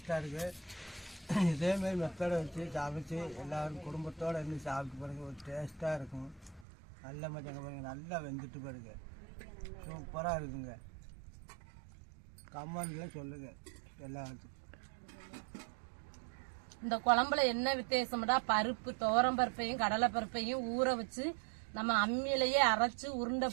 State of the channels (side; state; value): left; drops out; at 6.7 s